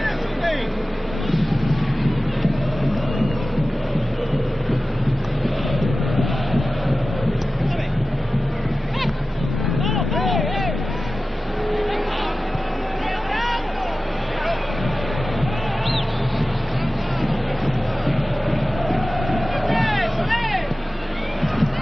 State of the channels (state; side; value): normal; both; correlation 0.95